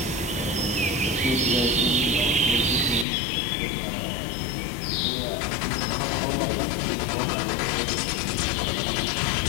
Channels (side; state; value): right; drops out; at 3.1 s